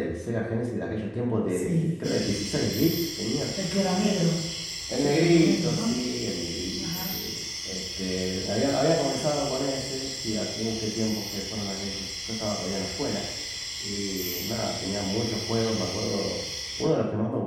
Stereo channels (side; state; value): both; identical; correlation 1.00